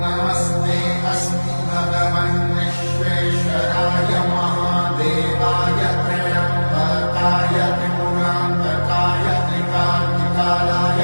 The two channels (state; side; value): inverted; both; correlation -1.00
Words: नमस्ते अस्तु भगवन् विश्वेश्वराय महादेवाय त्र्यम्बकाय त्रिपुरान्तकाय त्रिकाग्निकालाय